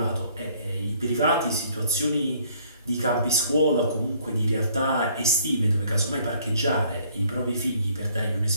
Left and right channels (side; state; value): both; inverted; correlation -0.61